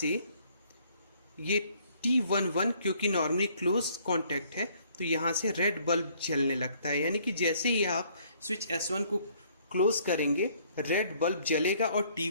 ये T11 क्योंकि नॉर्मली क्लोज कॉन्टैक्ट है तो यहाँ से रेड बल्ब जलने लगता है। यानी कि जैसे ही आप स्विच S1 को क्लोज करेंगे रेड बल्ब जलेगा और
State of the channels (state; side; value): inverted; both; correlation -0.63